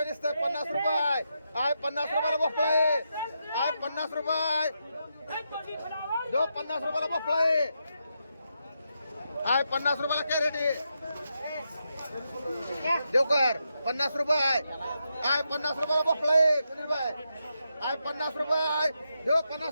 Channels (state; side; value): inverted; both; correlation -0.84